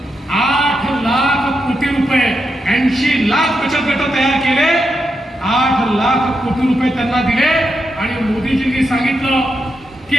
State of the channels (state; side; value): normal; both; correlation 0.84